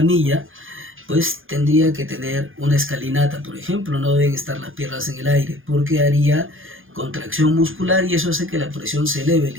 pues tendría que tener una escalinata, por ejemplo, no deben estar las piernas en el aire, porque haría contracción muscular y eso hace que la presión se eleve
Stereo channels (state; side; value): late; left; 0.59 ms